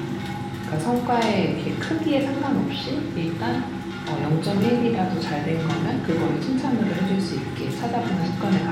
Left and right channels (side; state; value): both; identical; correlation 1.00